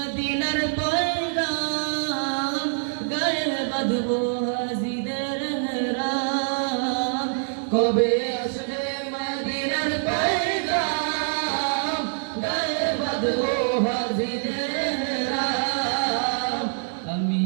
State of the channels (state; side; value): silent; left; digital silence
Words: পয়গাম, গায়ে বাঁধবো হাজিদের হেরাম। কবে আসবে মদিনার পয়গাম, গায়ে বাঁধবো হাজিদের হেরাম। আমি